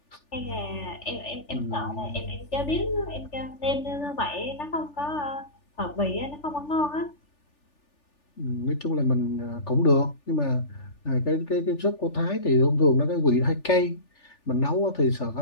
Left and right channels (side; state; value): right; late; 3.4 ms